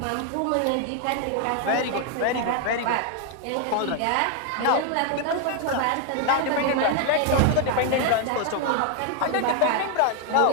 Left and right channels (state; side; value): different; both; correlation 0.00